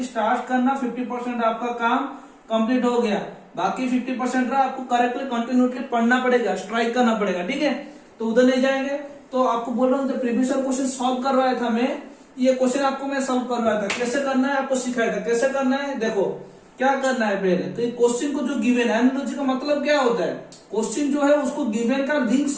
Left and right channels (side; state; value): both; identical; correlation 1.00